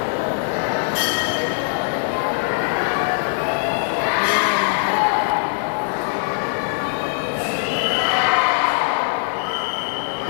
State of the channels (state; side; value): silent; right; digital silence